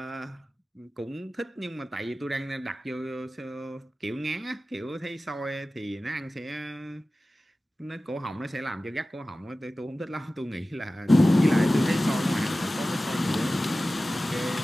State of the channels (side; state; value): both; normal; correlation 0.96